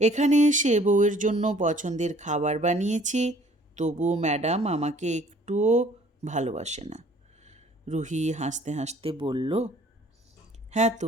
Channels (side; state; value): both; normal; correlation 0.56